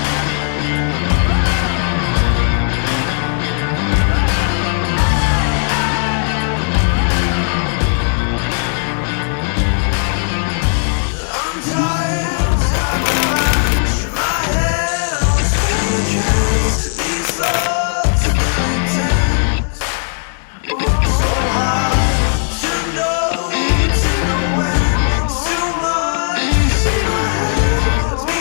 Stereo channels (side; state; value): right; silent; digital silence